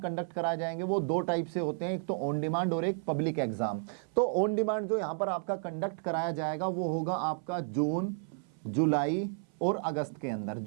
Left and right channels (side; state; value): left; silent; 56 dB below the other